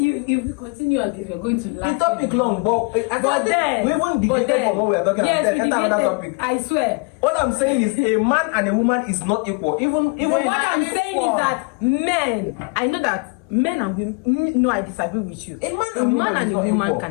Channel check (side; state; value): right; quieter; 32.2 dB